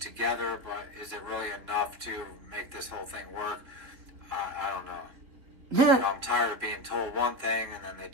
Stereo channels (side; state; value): left; late; 3.8 ms